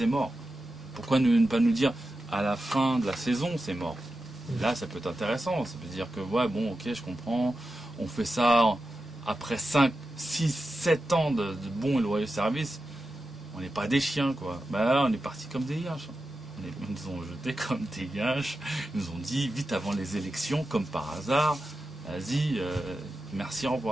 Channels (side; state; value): both; normal; correlation 0.91